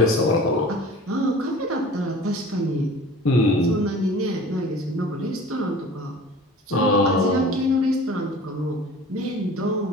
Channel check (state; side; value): normal; both; correlation 0.43